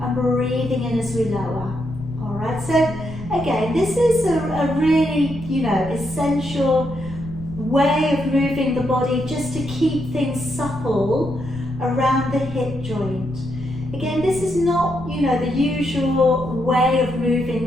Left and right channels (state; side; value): noise; left; rumble, 13 dB below the sound